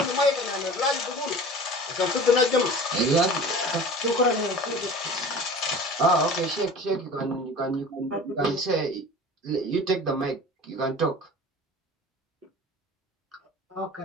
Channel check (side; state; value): both; normal; correlation 0.39